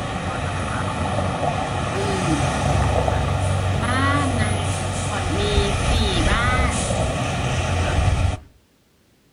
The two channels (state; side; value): identical; both; correlation 1.00